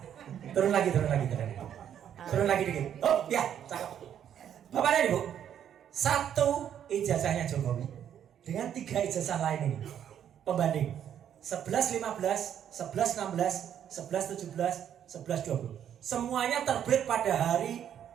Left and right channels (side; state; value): left; quieter; 9.6 dB